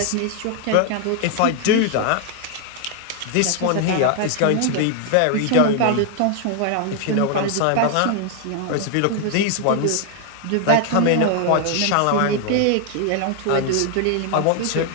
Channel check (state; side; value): different; both; correlation 0.00